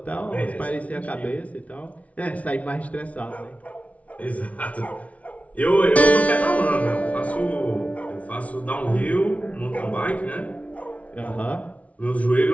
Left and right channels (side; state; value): right; late; 0.066 ms